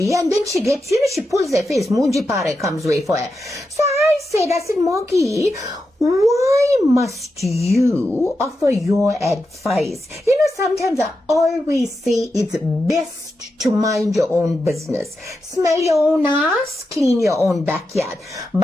and then she gets, she pulls her face, Munji Pare comes way for her. So I said, Monkey, why must you offer your advice? Sometimes I always say it's best to mind your own business. Smell your own ass, clean your own backyard.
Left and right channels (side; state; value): both; normal; correlation 0.88